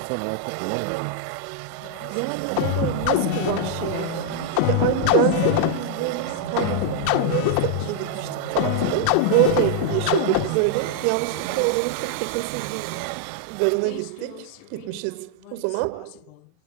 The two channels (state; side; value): different; both; correlation -0.01